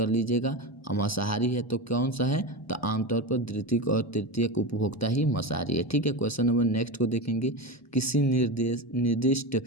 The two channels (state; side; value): normal; both; correlation 0.21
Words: लीजिएगा, मांसाहारी है तो कौन सा है? तो आमतौर पर द्वितीय और तृतीय उपभोक्ता ही मांसाहारी है। ठीक है, क्वेश्चन नंबर नेक्स्ट को देखेंगे, किसी निर्दिष्ट